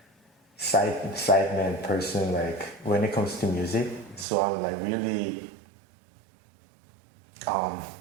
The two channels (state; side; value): drops out; left; at 4.2 s